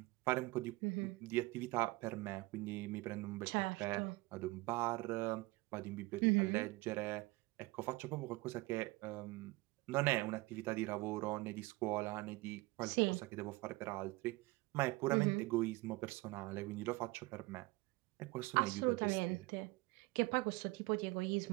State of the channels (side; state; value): left; quieter; 22.3 dB